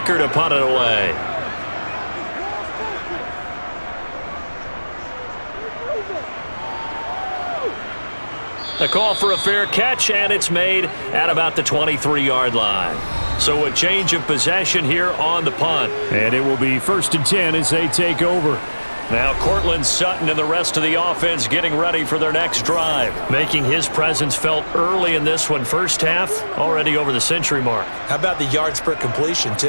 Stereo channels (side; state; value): both; inverted; correlation -1.00